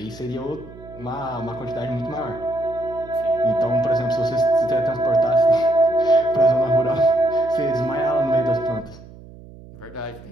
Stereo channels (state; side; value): noise; right; hum, 19 dB below the sound